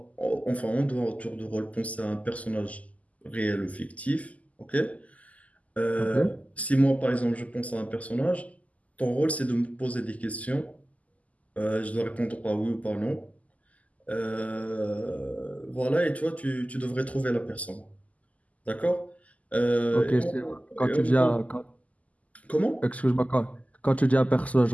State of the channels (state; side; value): late; right; 0.072 ms